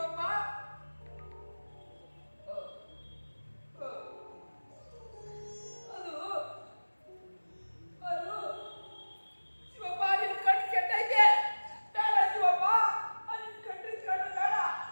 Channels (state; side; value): inverted; both; correlation -1.00